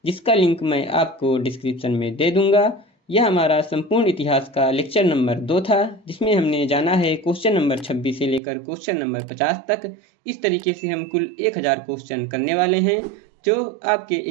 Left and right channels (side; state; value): left; drops out; at 8.4 s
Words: जिसका लिंक मैं आपको डिस्क्रिप्शन में दे दूंगा। यह हमारा संपूर्ण इतिहास का लेक्चर नंबर 2 था, जिसमें हमने जाना है क्वेश्चन नंबर 26 से लेकर क्वेश्चन नंबर 50 तक। इस तरीके से हम कुल 1000 क्वेश्चन करने वाले हैं, जो आपके